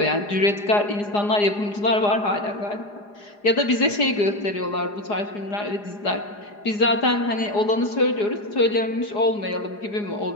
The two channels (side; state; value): right; late; 4.9 ms